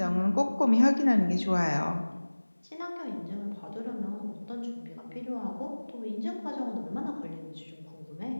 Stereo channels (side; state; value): both; inverted; correlation -1.00